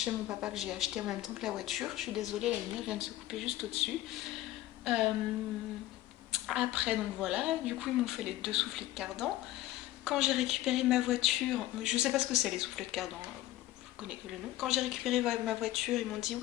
chez mon papa que j'ai acheté en même temps que la voiture. Je suis désolée, la lumière vient de se couper juste au-dessus. Après, donc voilà, du coup, ils m'ont fait les 2 soufflets de cardan. Quand j'ai récupéré ma voiture, je sais pas ce que c'est les soufflets de cardan. connais que le nom. Quand j'ai récupéré ma voiture, ils m'ont dit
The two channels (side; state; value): right; quieter; 15.6 dB